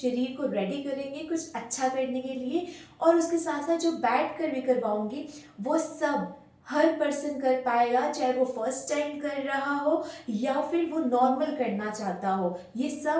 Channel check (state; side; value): identical; both; correlation 1.00